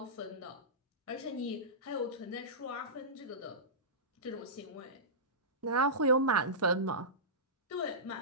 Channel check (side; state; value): both; normal; correlation -0.19